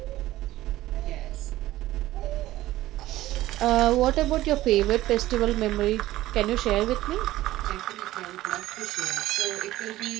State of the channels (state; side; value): quieter; left; 15.9 dB